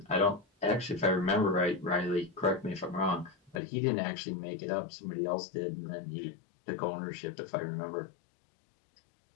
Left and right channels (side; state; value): right; drops out; at 3.6 s